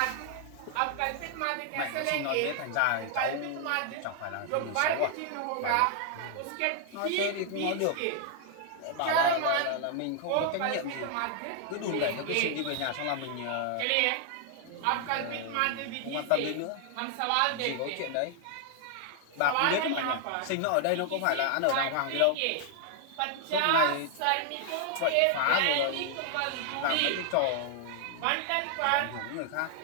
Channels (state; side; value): different; both; correlation 0.00